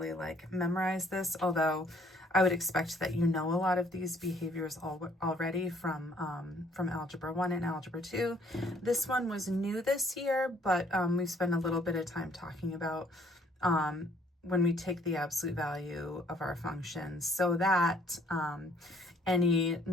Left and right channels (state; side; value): normal; both; correlation 0.62